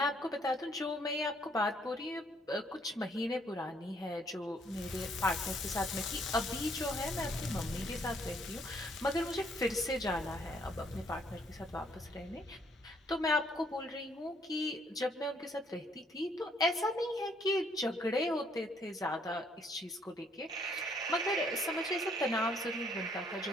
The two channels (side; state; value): both; normal; correlation 0.67